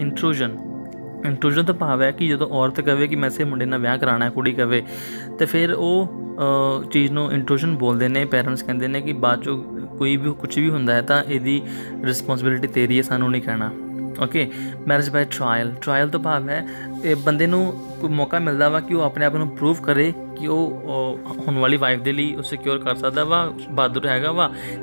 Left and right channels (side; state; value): both; inverted; correlation -1.00